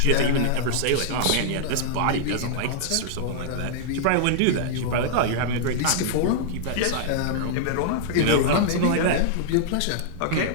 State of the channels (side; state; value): both; different; correlation -0.01